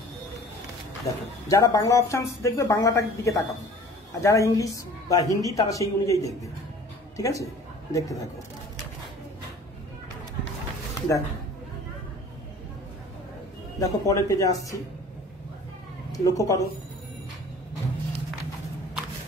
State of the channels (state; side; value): normal; both; correlation 0.47